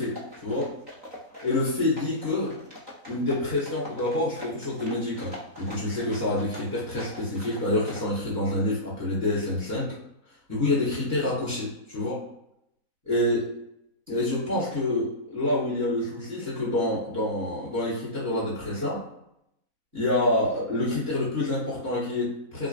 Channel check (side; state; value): left; late; 3.9 ms